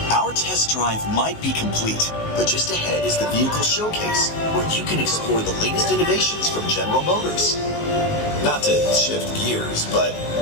Our test drive might be complete, but just ahead is the vehicle showcase, where you can explore the latest innovations from General Motors. Not to shift gears, but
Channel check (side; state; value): right; late; 19 ms